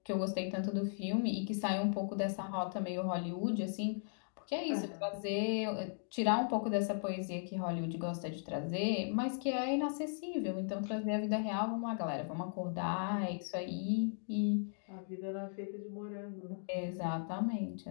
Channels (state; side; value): silent; right; digital silence